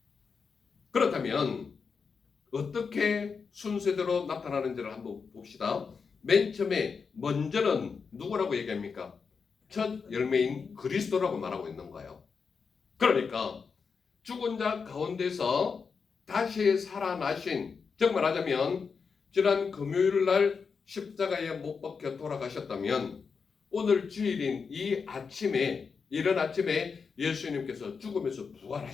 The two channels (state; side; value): quieter; right; 5.5 dB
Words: 그렇다면 어떻게 순서대로 나타나는지를 한번 봅시다. 맨 처음에 먼저는 누구라고 얘기합니까? 첫 열매인 그리스도라고 말하고 있는 거예요. 그러니까 죽은 자 가운데서 다시 살아나신, 정말 하자면 지난 금요일 날 십자가에 못 박혀 돌아가셨다면 오늘 주일인 이 아침에, 이른 아침에 예수님께서 죽음에서